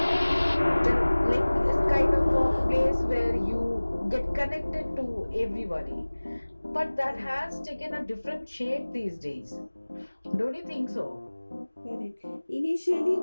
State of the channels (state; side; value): inverted; both; correlation -1.00